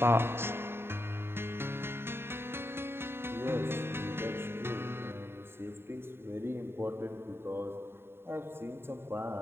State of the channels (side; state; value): left; late; 0.11 ms